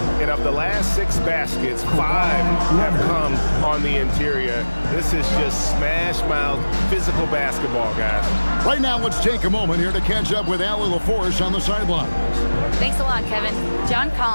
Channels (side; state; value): both; inverted; correlation -1.00